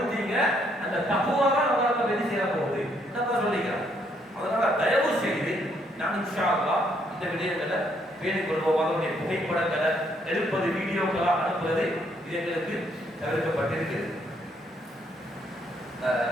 அந்த தக்வா தான் உங்களுக்கு வெற்றி செய்ய போகுது. என்னப்பா சொல்லிக்கிறான். அதனால தயவு செய்து நான் இன்ஷா அல்லாஹ் இந்த விடயங்களை பேணிக் கொள்வோம். அதனுடைய புகைப்படங்களை எடுப்பது, வீடியோக்களாக அனுப்புவது இது எங்களுக்கு தவிர்க்கப்பட்டிருக்கிறது.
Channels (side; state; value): both; normal; correlation 0.71